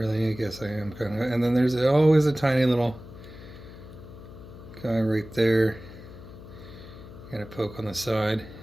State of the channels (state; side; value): noise; left; hum, 16 dB below the sound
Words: I guess I am kind of. And then there's always a tiny little guy right there. Got to poke on the side